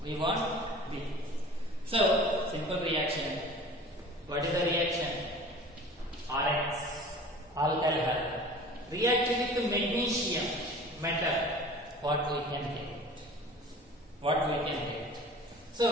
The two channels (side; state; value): both; normal; correlation 0.42